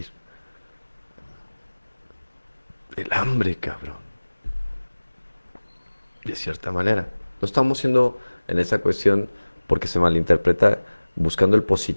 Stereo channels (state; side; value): inverted; both; correlation -1.00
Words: El hambre, cabrón. De cierta manera. No estamos siendo en esta cuestión, porque se malinterpreta, buscando el